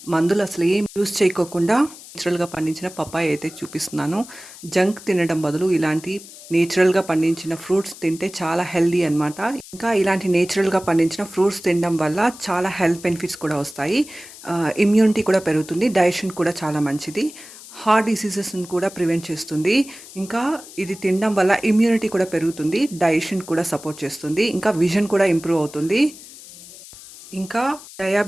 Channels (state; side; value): noise; left; hiss, 17 dB below the sound